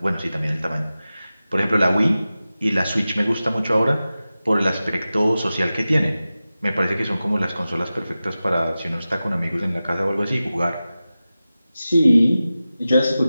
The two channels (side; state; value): both; inverted; correlation -0.95